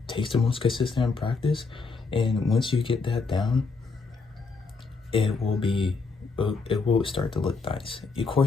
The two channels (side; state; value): right; quieter; 4.4 dB